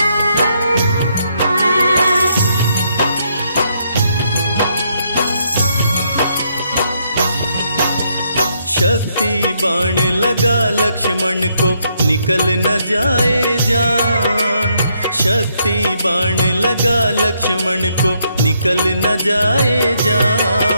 शक्ति बाण लगा लक्ष्मण को, निकल न जाए जान। शक्ति बाण लगा लक्ष्मण को, निकल न जाए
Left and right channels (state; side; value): inverted; both; correlation -0.74